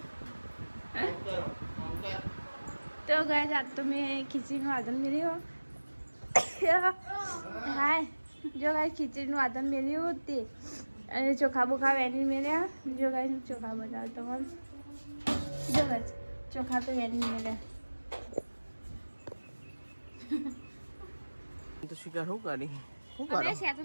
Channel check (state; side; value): inverted; both; correlation -1.00